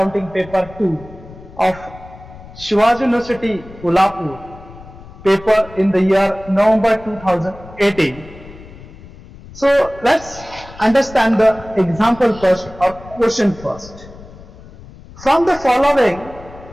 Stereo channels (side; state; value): left; noise; rumble, 18 dB below the sound